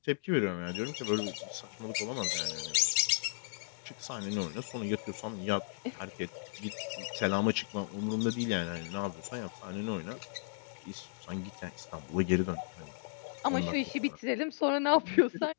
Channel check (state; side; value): silent; right; digital silence